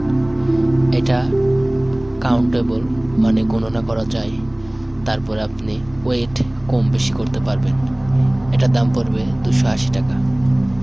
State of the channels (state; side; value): noise; right; rumble, 29 dB below the sound